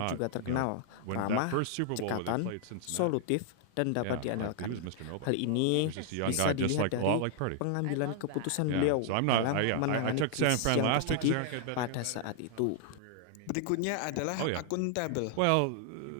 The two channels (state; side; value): different; both; correlation 0.00